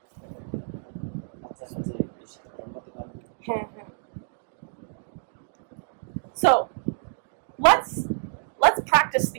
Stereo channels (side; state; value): left; silent; 60 dB below the other